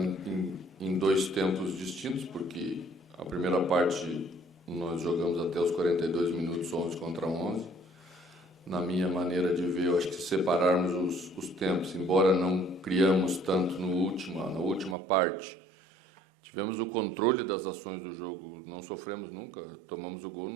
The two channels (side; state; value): left; drops out; at 15.0 s